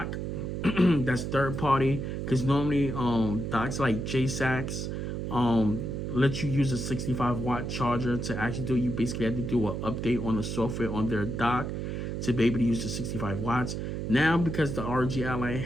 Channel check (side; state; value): right; noise; hum, 3 dB below the sound